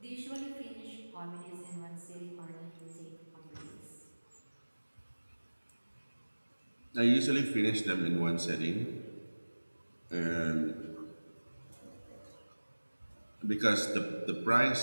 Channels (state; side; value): inverted; both; correlation -1.00